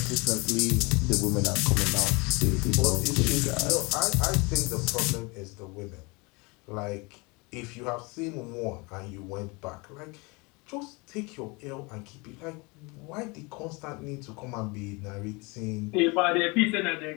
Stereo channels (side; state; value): right; quieter; 27.5 dB